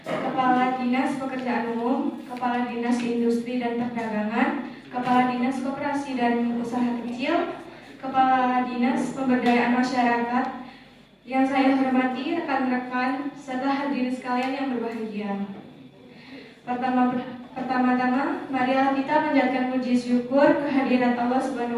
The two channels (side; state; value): both; identical; correlation 1.00